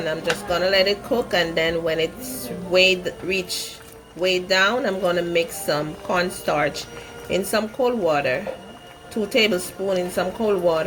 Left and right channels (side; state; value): both; identical; correlation 1.00